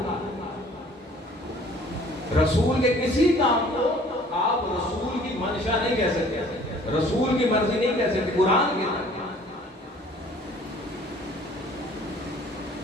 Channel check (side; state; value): both; normal; correlation 0.53